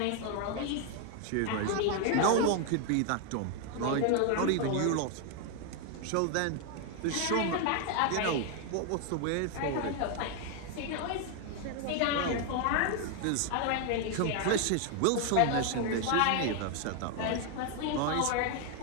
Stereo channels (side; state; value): both; different; correlation 0.01